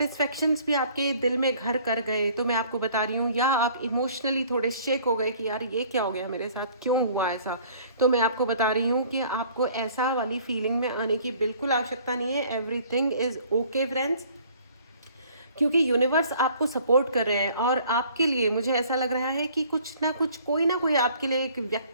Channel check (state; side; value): inverted; both; correlation -0.55